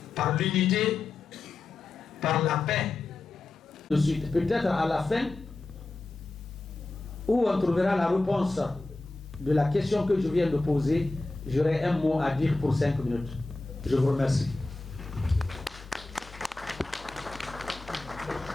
par l'unité, par la paix. De suite, peut-être à la fin, où on trouvera la réponse de la question que je viens de poser, j'aurai un mot à dire pour 5 minutes. Je vous remercie.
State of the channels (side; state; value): right; quieter; 3.2 dB